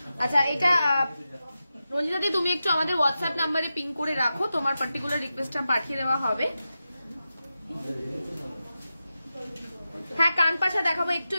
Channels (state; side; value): inverted; both; correlation -0.91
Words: আচ্ছা, এটা রঞ্জিতাদি তুমি একটু আমাদের হোয়াটসঅ্যাপ নাম্বারে পিং করে রাখো, তোমার পার্টিকুলার রিকোয়েস্টটা পাঠিয়ে দেওয়া হবে। হ্যাঁ, কানপাশা দেখাবো, একটু